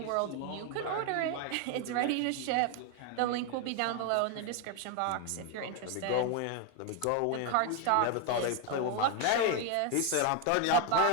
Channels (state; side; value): different; both; correlation 0.01